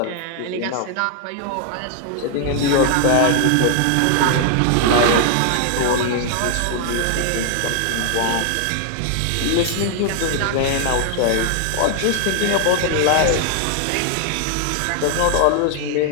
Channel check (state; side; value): different; both; correlation 0.00